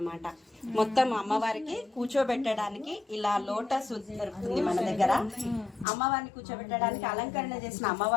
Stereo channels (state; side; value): drops out; right; at 5.9 s